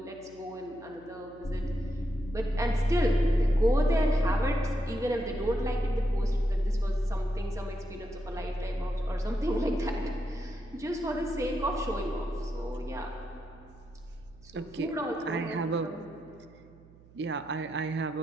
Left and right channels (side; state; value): right; noise; hum, 24 dB below the sound